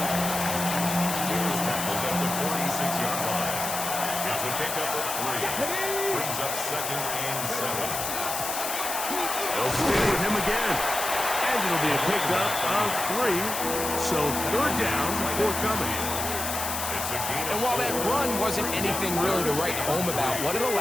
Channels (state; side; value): noise; left; hiss, 4 dB below the sound